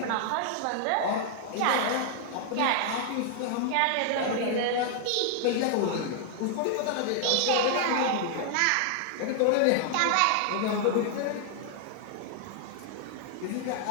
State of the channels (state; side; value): different; both; correlation 0.00